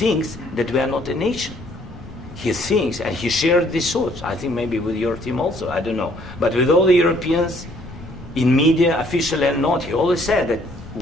that we are not a nation. He thinks, and he shared these thoughts. I think maybe with your team also. I don't know, but with all the Europeans, in media, officially and not, he always said that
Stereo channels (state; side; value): noise; left; rumble, 18 dB below the sound